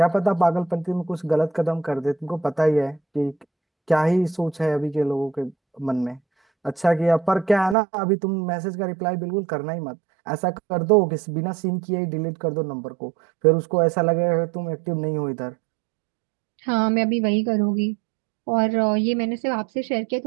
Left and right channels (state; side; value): drops out; left; at 7.8 s